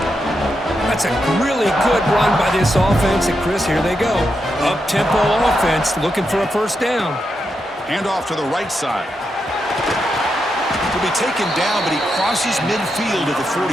That's a really good run by this offense. And, Chris, here they go. Up-tempo offense looking for a 1st down. Hand off to the right side. He'll be taken down, but he crosses midfield at the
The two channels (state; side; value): normal; both; correlation 0.84